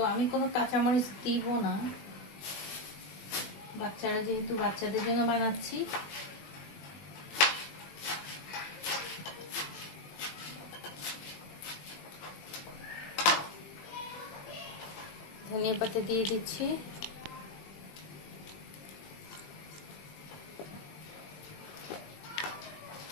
আমি কোনো কাঁচামরিচ দিব না, বাচ্চারা যেহেতু বাচ্চাদের জন্য বানাচ্ছি। ধনিয়া পাতা দিয়ে দিচ্ছি,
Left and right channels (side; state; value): right; late; 20 ms